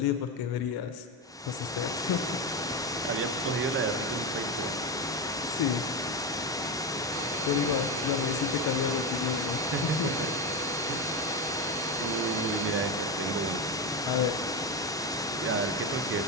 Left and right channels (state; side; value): normal; both; correlation 0.15